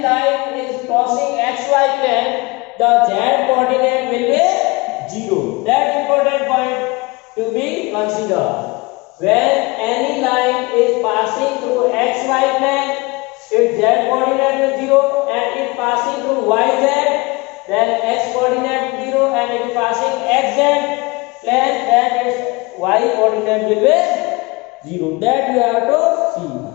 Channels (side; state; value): right; quieter; 25.0 dB